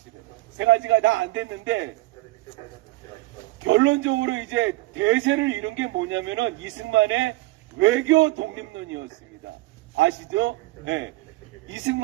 세 가지가 다 안 됐는데, 결론적으로 이제 대세를 이룬 게 뭐냐면은 이승만의 외교 독립론이었습니다. 아시죠? 네.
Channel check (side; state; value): left; quieter; 19.5 dB